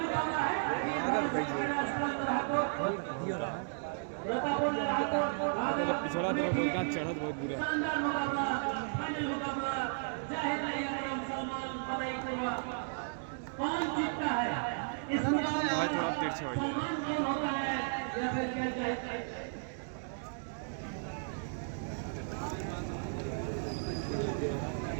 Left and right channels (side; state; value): left; silent; digital silence